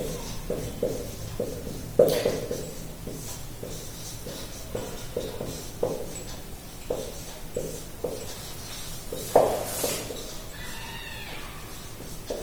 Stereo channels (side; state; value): both; identical; correlation 1.00